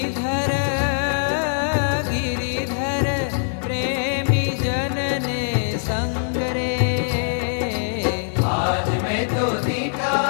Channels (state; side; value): silent; right; digital silence